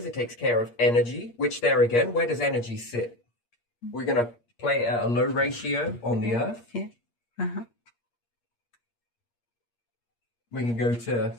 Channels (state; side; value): late; right; 8.5 ms